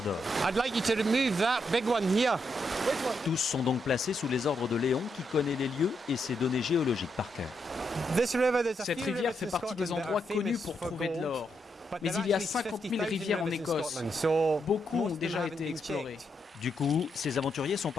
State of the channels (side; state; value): both; normal; correlation 0.80